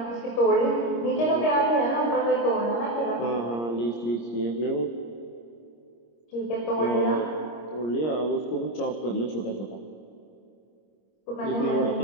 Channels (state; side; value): late; right; 26 ms